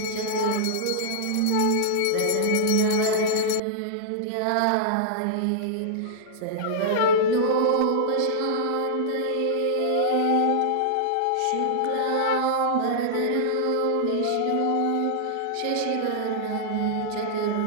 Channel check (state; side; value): different; both; correlation -0.01